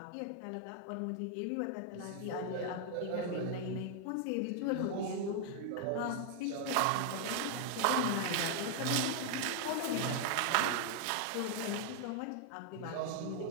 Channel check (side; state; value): both; different; correlation 0.00